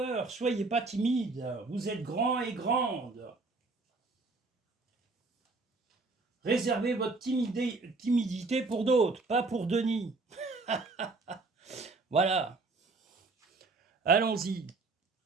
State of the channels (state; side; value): quieter; left; 3.6 dB